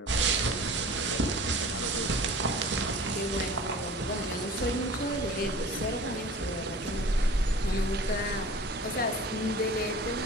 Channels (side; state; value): both; normal; correlation 0.42